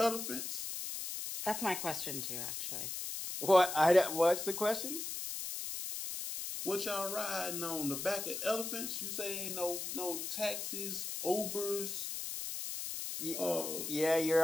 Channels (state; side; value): noise; left; hiss, 5 dB below the sound